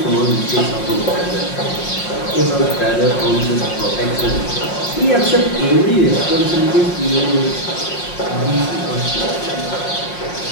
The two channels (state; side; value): late; right; 5.6 ms